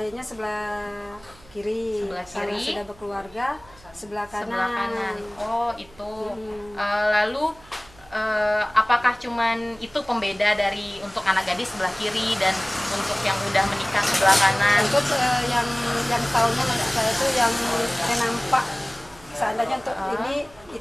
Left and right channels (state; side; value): noise; right; hum, 25 dB below the sound